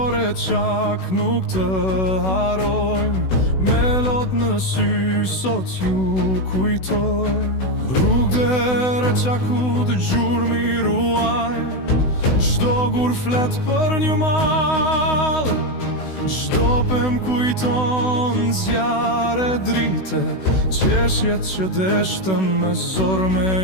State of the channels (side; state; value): right; late; 16 ms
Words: re qak nuk të harojmë, me lot në sy sot ju kujtojmë. Rrugë re qaku të gjurmi ruajnë, çdo gur flet për një mal, çdo pem kujton zjarre drite, qeshjet që deshtën me zor